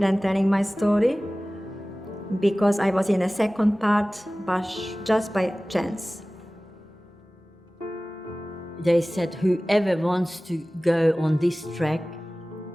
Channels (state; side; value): normal; both; correlation 0.98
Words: and telling my story, because I was in a second part, but just by chance. They said, whoever wants to go on this track,